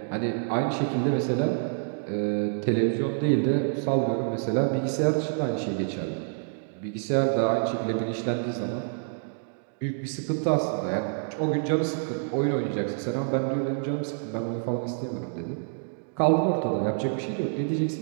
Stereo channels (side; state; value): left; silent; digital silence